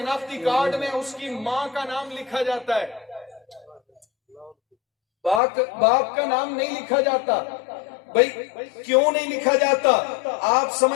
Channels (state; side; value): drops out; right; at 5.4 s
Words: کارڈ میں اس کی ماں کا نام لکھا جاتا ہے، باپ کا نام نہیں لکھا جاتا. بھائی کیوں نہیں لکھا جاتا؟ آپ